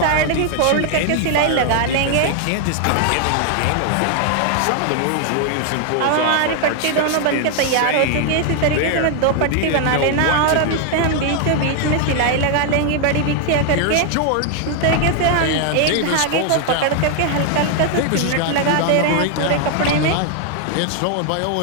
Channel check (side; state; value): both; different; correlation 0.00